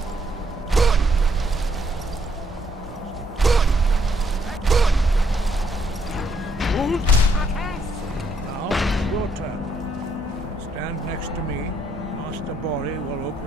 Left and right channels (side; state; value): both; normal; correlation 0.72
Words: Now, your turn. Stand next to me. Master Bori will